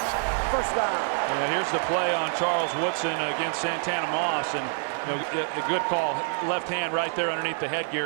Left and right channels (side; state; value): left; silent; 60 dB below the other